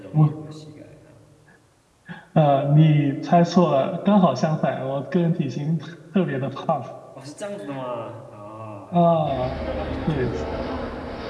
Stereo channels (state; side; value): identical; both; correlation 1.00